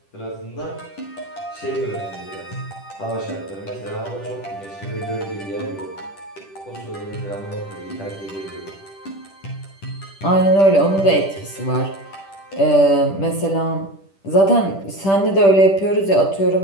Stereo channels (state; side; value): late; right; 10 ms